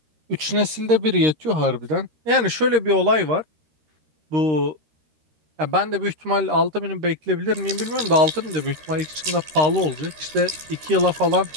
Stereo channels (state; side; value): late; left; 13 ms